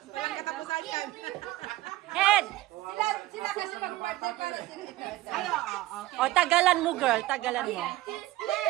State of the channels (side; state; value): left; quieter; 17.1 dB